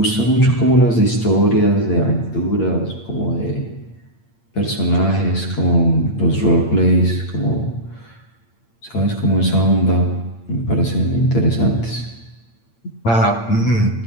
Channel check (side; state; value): right; late; 8.7 ms